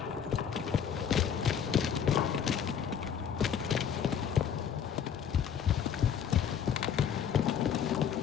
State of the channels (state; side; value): quieter; right; 8.0 dB